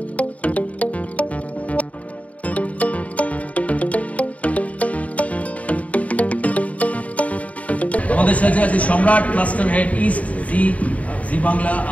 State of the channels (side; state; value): right; late; 0.068 ms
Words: আমাদের সাথে আছে সম্রাট, ক্লাস্টার হেড ইস্ট, জি বাংলা,